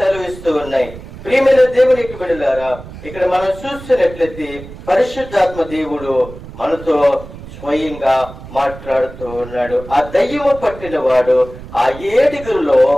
ఉన్నాయి. ప్రియమైన దేవునికి బిడ్డలారా, ఇక్కడ మనం చూస్తున్నట్లయితే పరిశుద్ధాత్మ దేవుడు మనతో స్వయంగా మాట్లాడుతూ ఉన్నాడు. ఆ దయ్యము పట్టిన వాడు ఆ ఏడుగురులో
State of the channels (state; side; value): noise; right; rumble, 15 dB below the sound